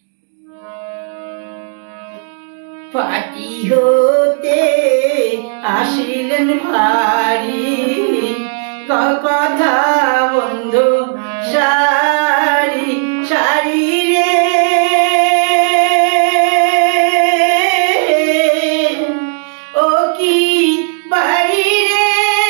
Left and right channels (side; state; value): left; silent; 71 dB below the other